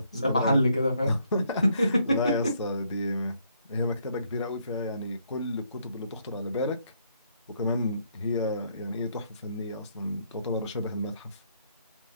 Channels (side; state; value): both; inverted; correlation -0.71